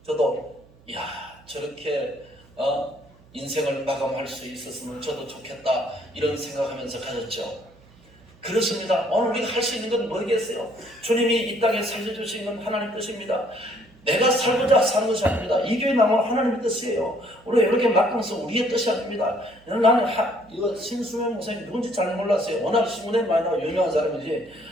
저도 저렇게 인생을 마감할 수 있었으면 저도 좋겠다 이런 생각하면서 가졌죠. 그렇습니다. 오늘 우리가 할 수 있는 건 뭐겠어요? 주님이 이 땅에 살려주신 건 하나님 뜻입니다. 내가 살고자 사는 것이 아닙니다. 이 교회 나오면 하나님의 뜻이에요. 우리가 이렇게 막강해서 우리의 뜻이 아닙니다. 나는 이거 신수명 목사님 누군지 잘 몰랐어요. 워낙 신문에 많이 나와 유명한 사람이지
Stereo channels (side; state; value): right; noise; hum, 27 dB below the sound